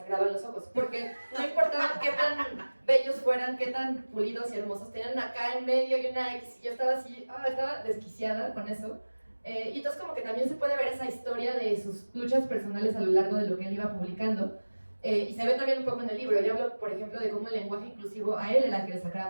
los ojos, porque no importaba qué tan bellos fueran, qué tan pulidos y hermosos, tenían acá en medio y una X, y yo estaba así, estaba desquiciada con eso. Y entonces como que también se puede ver esa historia de sus luchas personales a lo largo de lo que él iba publicando, y se ve también un poco en el libro. Yo hablo, por ejemplo, de cómo el lenguaje inclusivo a él era el que le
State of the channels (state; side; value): inverted; both; correlation -1.00